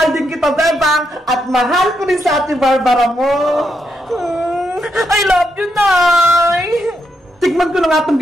din kita, Bebang! At mahal ko rin sa Ate Barbara mo! I love you, nay! Tikman ko na nga itong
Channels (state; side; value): normal; both; correlation 0.81